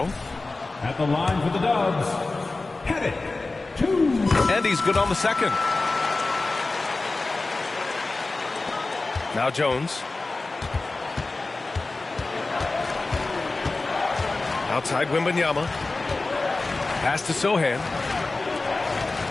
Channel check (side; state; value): right; quieter; 3.4 dB